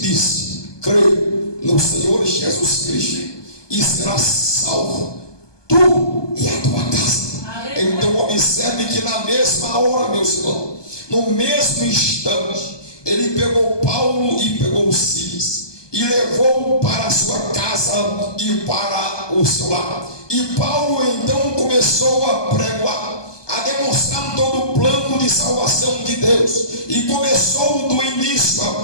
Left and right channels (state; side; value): late; right; 1.2 ms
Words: crê no Senhor Jesus Cristo e serás salvo, tu e a tua casa. Então observe que na mesma hora, meus irmãos, no mesmo instante, ele pegou Paulo e pegou Silas e levou para a sua casa e para o seu lar. E Paulo então começou a pregoar, a demonstrar todo o plano de salvação de Deus, e começou do início